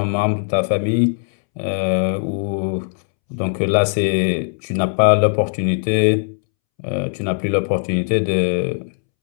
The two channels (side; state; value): right; silent; 66 dB below the other